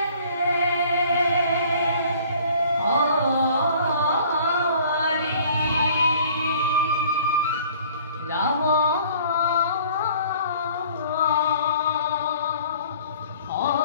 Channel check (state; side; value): inverted; both; correlation -0.53